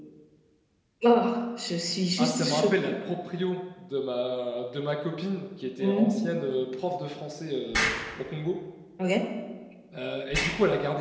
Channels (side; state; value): both; identical; correlation 1.00